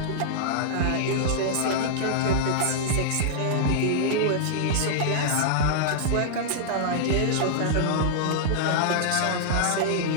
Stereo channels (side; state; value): both; different; correlation -0.02